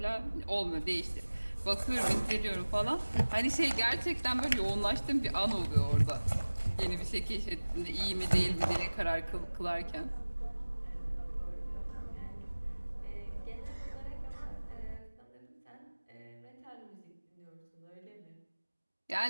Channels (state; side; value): inverted; both; correlation -1.00